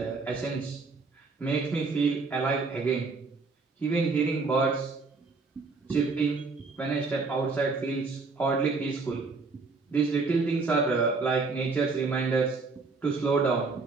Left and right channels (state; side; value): quieter; left; 4.1 dB